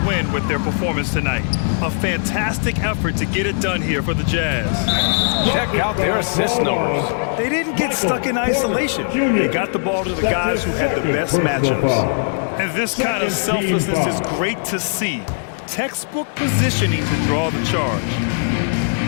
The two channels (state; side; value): silent; right; digital silence